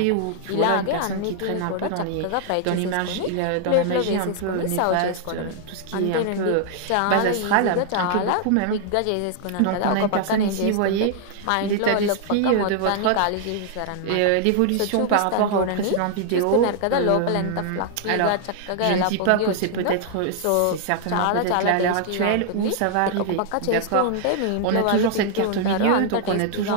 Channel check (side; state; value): both; different; correlation -0.01